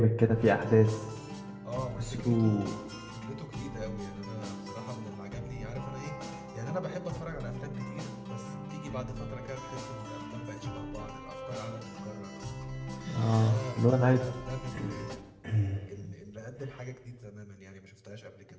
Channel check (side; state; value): both; identical; correlation 1.00